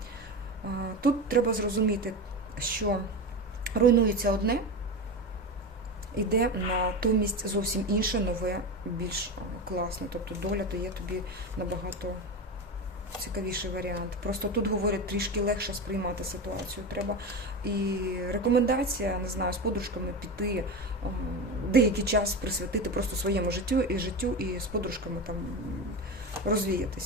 Тут треба зрозуміти, що руйнується одне, іде натомість зовсім інше, нове, більш класне. Тобто доля дає тобі набагато цікавіший варіант. Просто тут, говорять, трішки легше сприймати ситуацію треба. І рекомендація, не знаю, з подружками піти, деякий час присвятити просто своєму життю і з подружками там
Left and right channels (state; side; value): normal; both; correlation 0.22